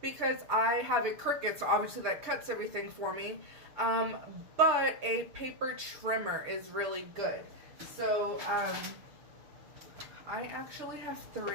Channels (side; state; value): left; late; 6.7 ms